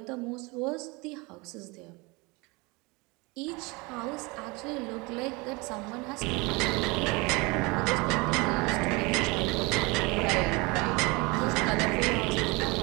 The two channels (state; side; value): quieter; left; 26.1 dB